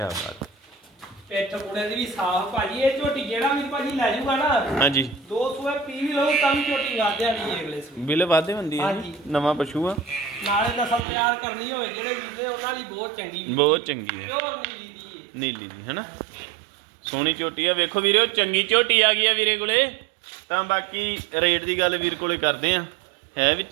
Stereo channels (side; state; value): left; drops out; at 11.1 s